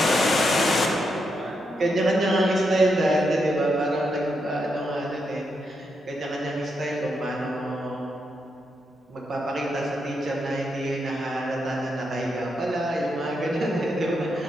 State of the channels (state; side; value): normal; both; correlation 0.82